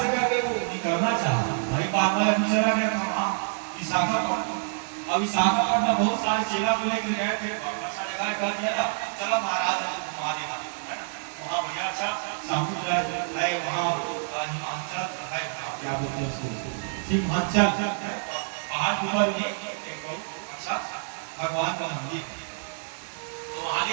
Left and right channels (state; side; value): silent; left; 60 dB below the other